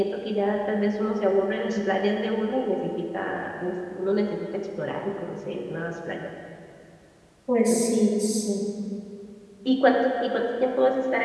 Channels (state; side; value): identical; both; correlation 1.00